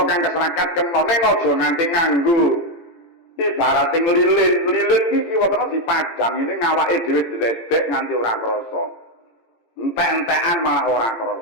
kang keserakat kena ning aja nganti nganggo ibarate lilin iki kiwatene dipadang ini ngawake dhewe diledek nganti ora krasa. Entek-entekan malah ora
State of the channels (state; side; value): late; right; 17 ms